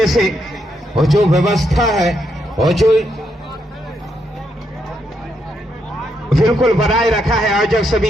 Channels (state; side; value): normal; both; correlation 0.79